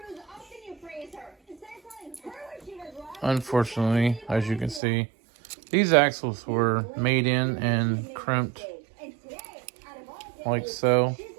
unfortunately, as you can see, these axles were made in and crimped like so.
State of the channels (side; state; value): left; drops out; at 4.8 s